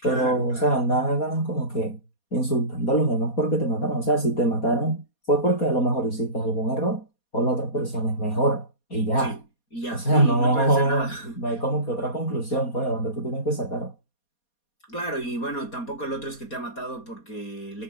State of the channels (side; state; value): right; late; 4.2 ms